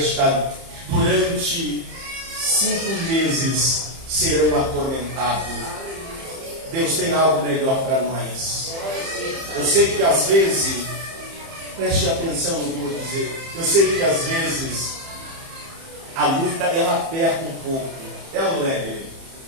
durante 5 meses serão atormentados. Deus tem algo melhor para nós. Eu sei que às vezes, preste atenção no que eu vou dizer, eu sei que às vezes a luta ela aperta um pouco, é ou não é?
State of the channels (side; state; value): left; late; 30 ms